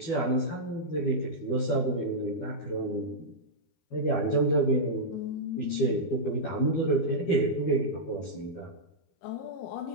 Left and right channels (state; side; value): late; right; 12 ms